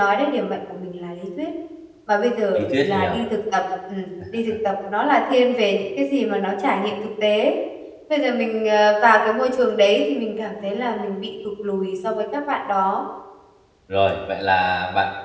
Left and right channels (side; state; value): both; identical; correlation 1.00